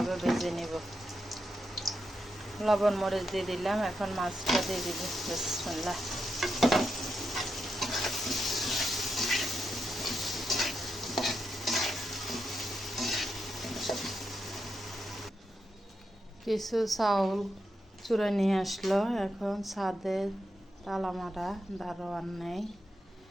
ভেজে নিব। লবণ মরিচ দিয়ে দিলাম। এখন মাছটা দিয়ে দিব। বিসমিল্লাহ। কিছু চাউল চুড়ে নিয়ে আসলো। এখন ছাদে তালা মারা, দারোয়ান নেই,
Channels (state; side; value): normal; both; correlation 0.85